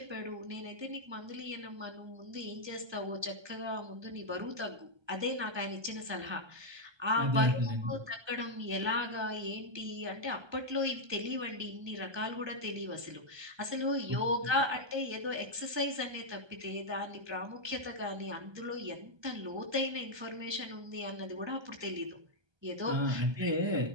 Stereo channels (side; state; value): left; late; 1.3 ms